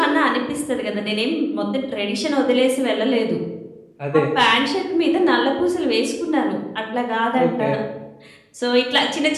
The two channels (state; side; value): identical; both; correlation 1.00